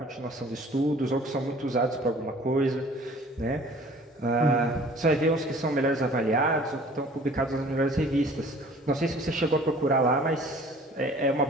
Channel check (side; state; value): both; normal; correlation 0.50